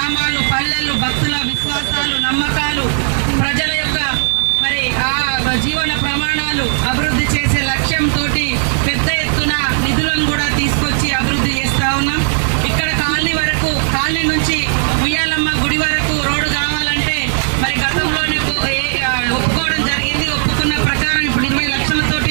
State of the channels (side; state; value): left; silent; digital silence